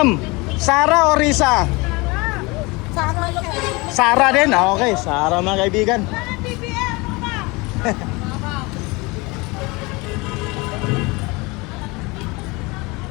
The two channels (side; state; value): right; quieter; 25.3 dB